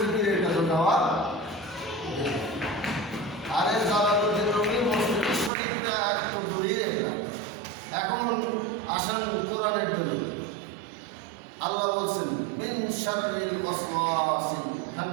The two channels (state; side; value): drops out; left; at 5.5 s